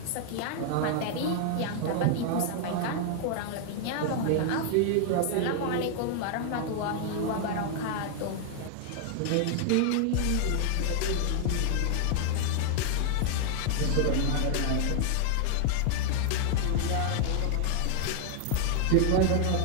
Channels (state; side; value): different; both; correlation 0.00